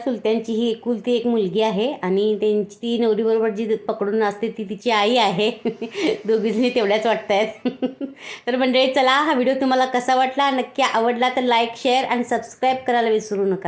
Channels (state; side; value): identical; both; correlation 1.00